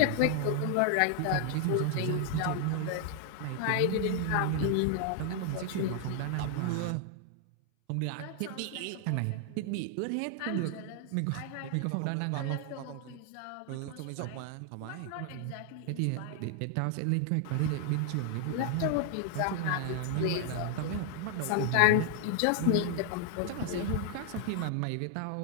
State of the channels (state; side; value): different; both; correlation 0.00